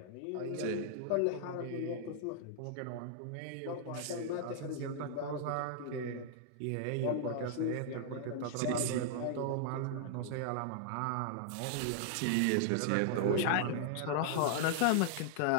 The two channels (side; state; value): both; different; correlation -0.01